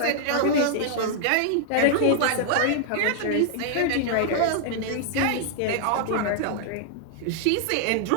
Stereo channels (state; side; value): different; both; correlation -0.01